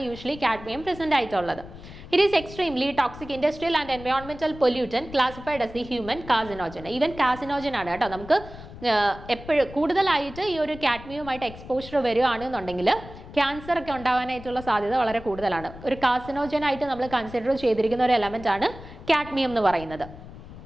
യൂഷ്വലി കാഡ്മിയം പ്രസന്റ് ആയിട്ടുള്ളത്. It is extremely toxic industrial and എൻവയോൺമെന്റൽ pollutant classified as the human carcinogen. Even carcinogen ആണ് കേട്ടോ. നമുക്ക് എപ്പോഴും കൂടുതലായിട്ട് ഈ ഒരു കാഡ്മിയവുമായിട്ട് എക്സ്പോഷർ വരികയാണെന്നുണ്ടെങ്കിൽ ക്യാൻസർ ഒക്കെ ഉണ്ടാവാനായിട്ടുള്ള സാധ്യത വളരെ കൂടുതലാണ്. ഒരു കാർസിനോജൻ ആയിട്ട് നമ്മൾ കൺസിഡർ ചെയ്തിരിക്കുന്ന ഒരു എലമെന്റ് ആണ് കാഡ്മിയം എന്ന് പറയുന്നത്.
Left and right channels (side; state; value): left; noise; rumble, 15 dB below the sound